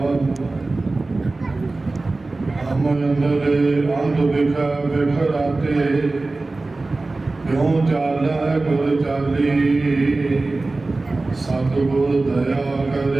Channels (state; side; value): quieter; left; 3.3 dB